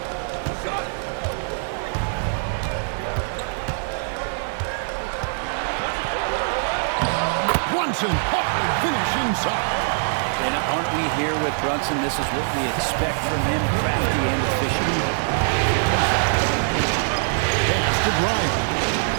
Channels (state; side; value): silent; left; digital silence